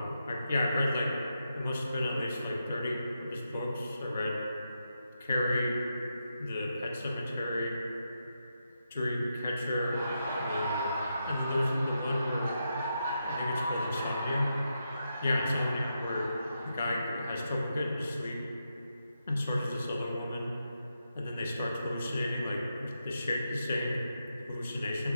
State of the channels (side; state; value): both; inverted; correlation -0.85